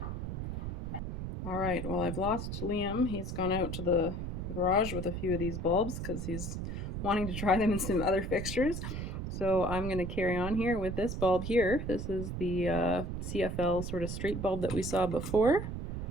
All right, well, I've lost Liam. He's gone out to the garage with a few of these bulbs because he's wanting to try them in some other fixtures. So I'm going to carry on here with this bulb here. This is the CFL sort of straight bulb that we saw before. I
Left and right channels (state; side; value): noise; right; rumble, 5 dB below the sound